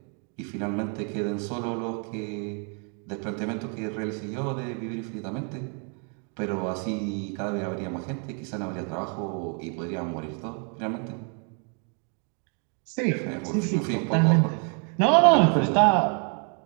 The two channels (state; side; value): quieter; left; 39.4 dB